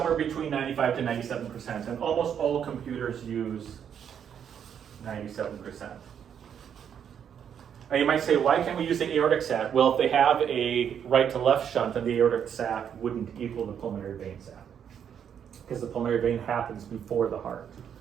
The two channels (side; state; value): left; quieter; 8.4 dB